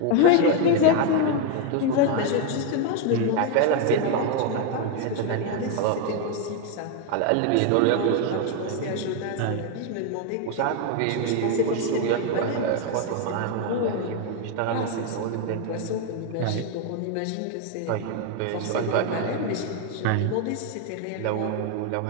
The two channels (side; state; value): both; different; correlation 0.01